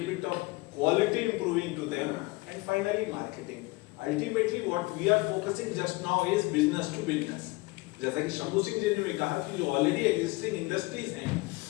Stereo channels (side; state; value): right; quieter; 23.2 dB